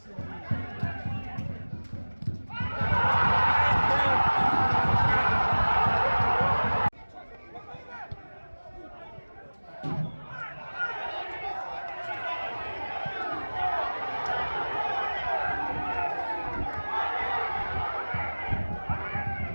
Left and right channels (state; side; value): inverted; both; correlation -1.00